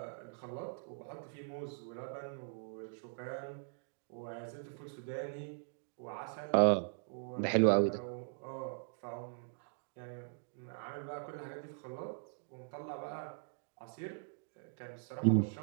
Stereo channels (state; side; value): silent; left; digital silence